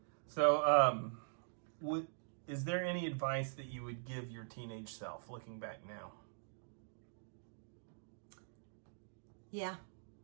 So, is there any advice that you would give your teenage self, looking back now? Yeah.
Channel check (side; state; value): left; silent; digital silence